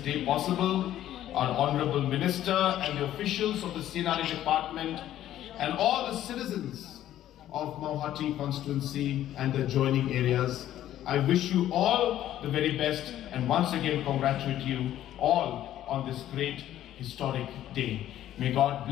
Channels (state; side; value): quieter; right; 12.4 dB